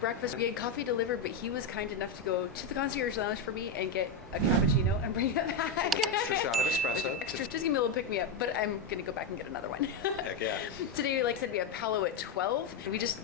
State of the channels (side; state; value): right; quieter; 3.9 dB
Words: We had coffee delivered, but he was kind enough to go to the concierge lounge for me and get a cappuccino and bring it back. With an extra shot of espresso. Just give me a little pick me up, but I'm gonna go back and get another one. Heck yeah. Today, like I said, we have Palo at 12. We